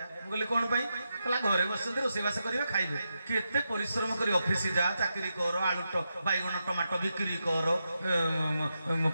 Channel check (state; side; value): inverted; both; correlation -0.87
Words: बोले कोन पई कहला घरे बसते रोसेबास करियो खाइबे केते परिश्रम करी ऑफिस जा चाकरी कर आलू बैगन टमाटो बिक्री कर